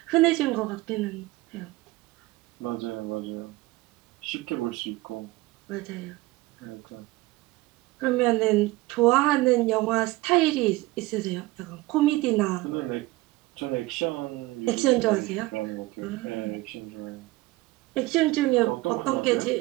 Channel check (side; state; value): left; quieter; 20.0 dB